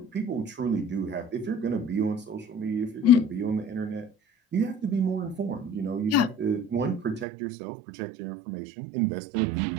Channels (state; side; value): drops out; left; at 7.2 s